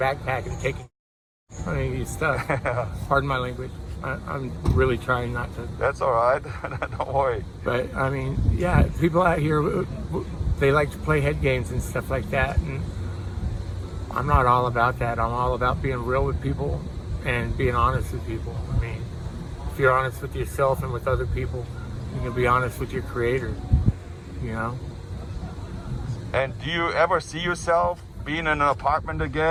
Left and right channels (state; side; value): identical; both; correlation 1.00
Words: and taking your stuff. Pardon my language. I'm really trying not to. That's all right. Don't worry. But I mean, yeah, people out here, they like to play head games and stuff like that, and I'm not all about that. I'm all about being real with people and being honest with people. I mean, if you're honest with yourself and with other people, you can be honest with your Creator, you know. And do you ever see yourself being in an apartment